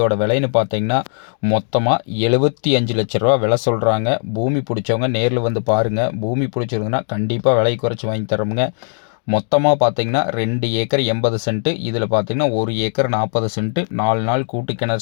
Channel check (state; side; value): silent; right; digital silence